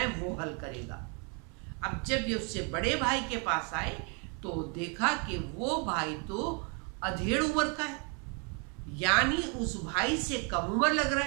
وہ حل کرے گا۔ اب جب یہ اس سے بڑے بھائی کے پاس آئے تو دیکھا کہ وہ بھائی تو ادھیڑ عمر کا ہے، یعنی اس بھائی سے کم عمر لگ رہا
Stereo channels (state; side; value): quieter; left; 36.0 dB